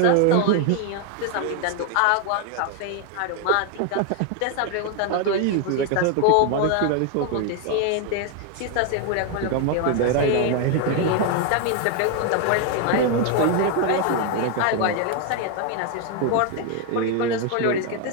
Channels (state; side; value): different; both; correlation 0.01